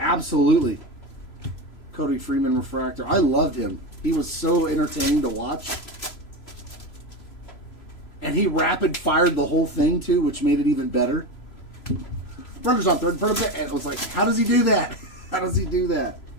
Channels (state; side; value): late; right; 3.0 ms